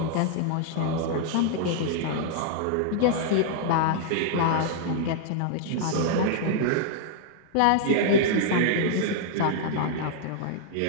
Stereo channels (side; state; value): both; different; correlation -0.01